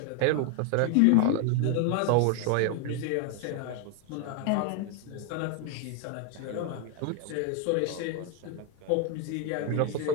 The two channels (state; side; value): different; both; correlation 0.01